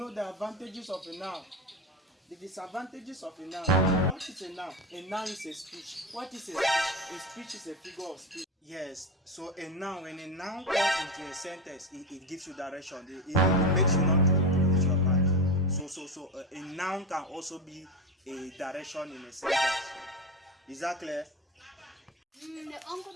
the advantages of a noun, the disadvantages of a noun. What is a noun? A noun is a speech. What is a speech? A speech is a figure of speech. Yes, so a noun, when a noun comes into a sentence, it gives you direction. It makes you not to lose your path. So a noun can also be a direction in a sentence. Is that clear? The uncle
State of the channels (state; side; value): normal; both; correlation 0.20